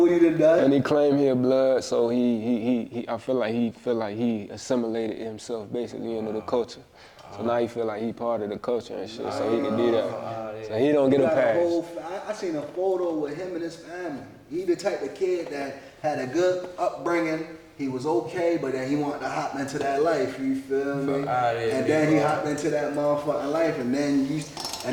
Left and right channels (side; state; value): both; identical; correlation 1.00